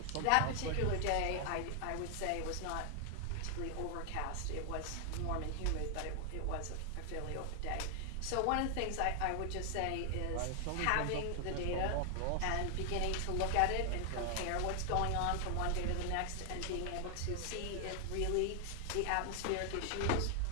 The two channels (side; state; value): both; different; correlation 0.00